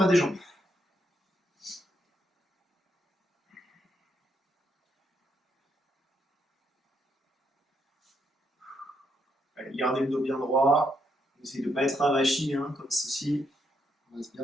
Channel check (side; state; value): both; normal; correlation 0.76